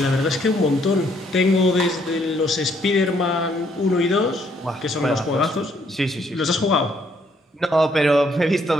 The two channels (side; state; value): both; normal; correlation 0.69